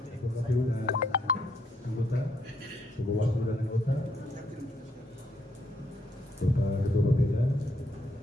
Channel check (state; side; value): normal; both; correlation 0.74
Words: Ketua KPU dan anggota, Ketua Bawaslu dan anggota, Bapak Ketua Bapeda,